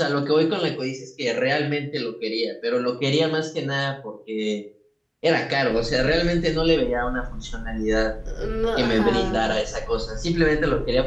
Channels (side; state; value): both; identical; correlation 1.00